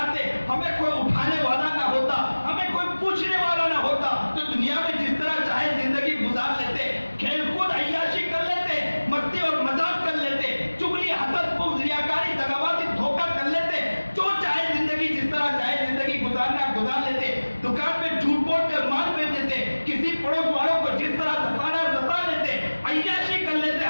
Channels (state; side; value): inverted; both; correlation -1.00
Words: ہمیں کوئی اٹھانے والا نہ ہوتا, ہمیں کوئی پوچھنے والا نہ ہوتا, تو دنیا میں جس طرح چاہے زندگی گزار لیتے, کھیل کود عیاشی کر لیتے, مستی اور مذاق کر لیتے, چغلی حسد بغض ریاکاری دغابازی دھوکہ کر لیتے, جو چاہے زندگی جس طرح چاہے زندگی گزارنا گزار لیتے, دکان میں جھوٹ بول کر مال بیچ دیتے, کسی پڑوس والوں کو جس طرح ستانا ستا لیتے, عیاشی کر لیتے,